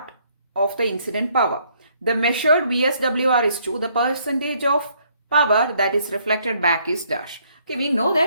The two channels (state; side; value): inverted; both; correlation -0.67